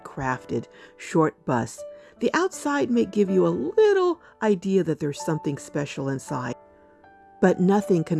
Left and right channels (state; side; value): identical; both; correlation 1.00